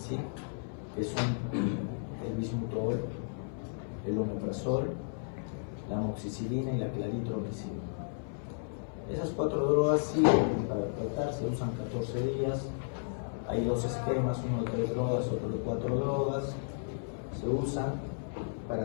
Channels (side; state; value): right; silent; 55 dB below the other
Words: que son el bismutol, el omeprazol, la amoxicilina y la claritromicina. Esas 4 drogas sirven para tratar, se usan 14 días. Hay 2 esquemas, uno de 3 drogas, otro de 4 drogas. Se usan